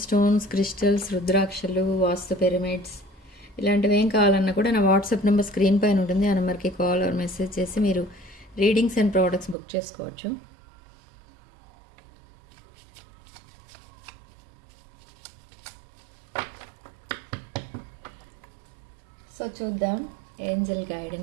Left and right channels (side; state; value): left; drops out; at 9.6 s